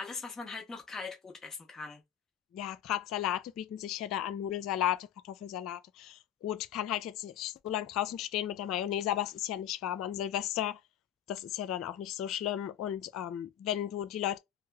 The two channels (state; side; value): quieter; right; 10.6 dB